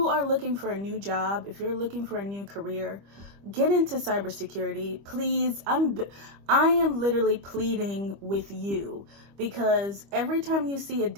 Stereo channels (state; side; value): late; left; 25 ms